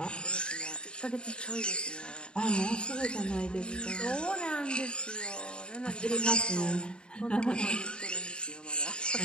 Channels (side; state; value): right; late; 0.051 ms